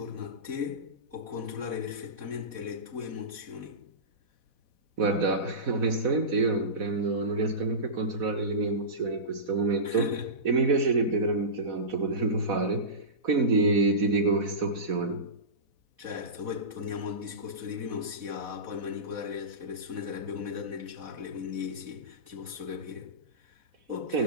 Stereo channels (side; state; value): left; late; 4.1 ms